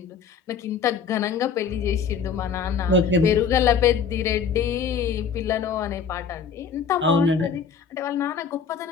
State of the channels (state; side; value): quieter; right; 6.4 dB